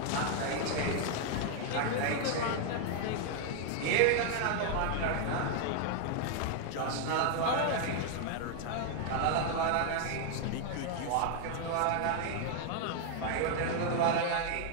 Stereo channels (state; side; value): different; both; correlation 0.00